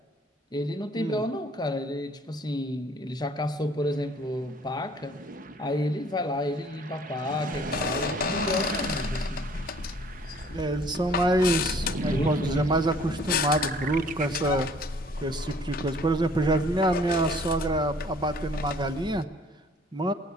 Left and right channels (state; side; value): normal; both; correlation 0.56